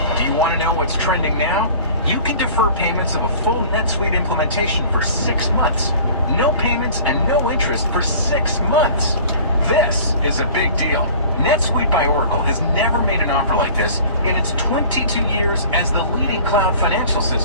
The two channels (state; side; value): inverted; both; correlation -0.45